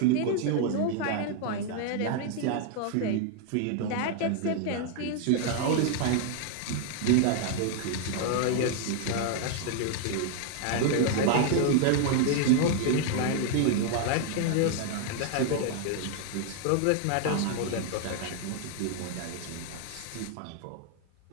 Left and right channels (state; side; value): different; both; correlation 0.00